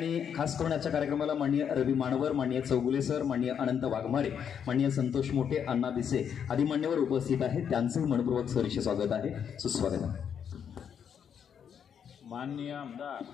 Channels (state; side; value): quieter; right; 7.9 dB